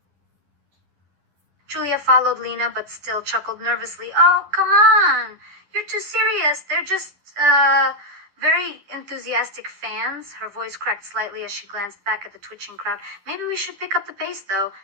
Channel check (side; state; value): left; late; 11 ms